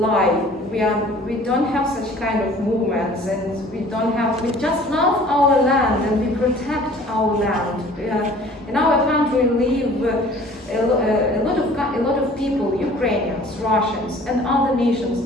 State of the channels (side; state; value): both; normal; correlation 0.50